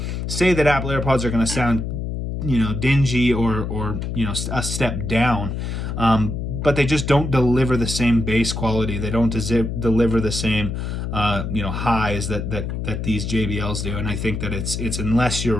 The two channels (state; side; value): noise; left; hum, 4 dB below the sound